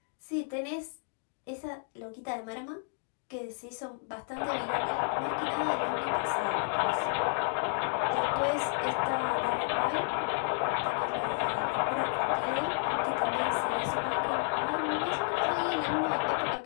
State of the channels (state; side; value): silent; right; 57 dB below the other